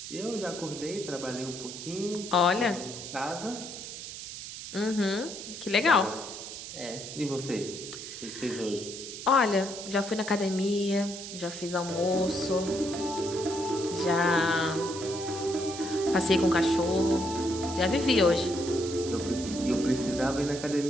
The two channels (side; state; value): right; noise; hiss, 10 dB below the sound